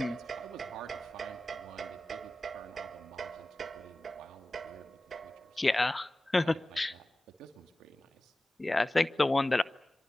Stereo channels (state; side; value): normal; both; correlation 0.96